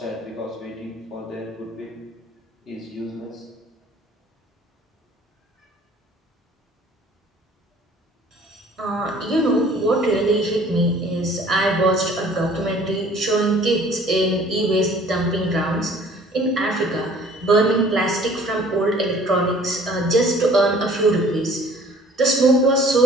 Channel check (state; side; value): normal; both; correlation 0.53